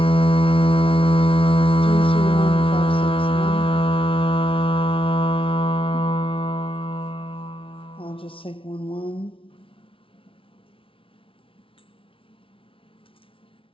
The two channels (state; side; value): late; right; 0.26 ms